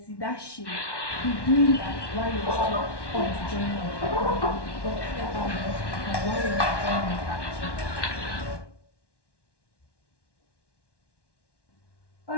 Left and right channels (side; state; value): right; late; 1.1 ms